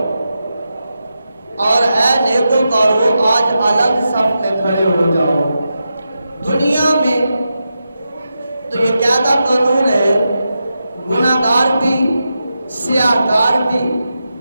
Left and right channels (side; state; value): both; inverted; correlation -0.88